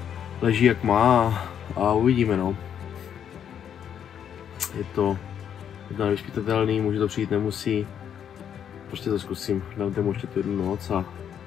leží jak má a uvidíme, no. Je to nevyspytatelný, může to přijít, nemusí. Prostě to zkusím, dám tomu ještě tu jednu noc a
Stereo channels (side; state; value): right; quieter; 8.8 dB